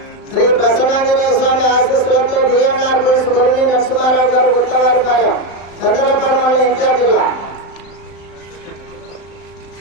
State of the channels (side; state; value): right; late; 35 ms